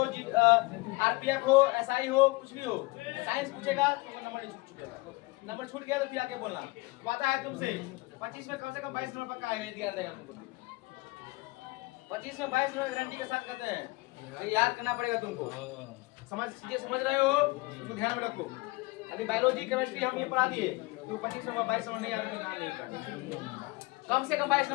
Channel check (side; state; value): right; quieter; 23.3 dB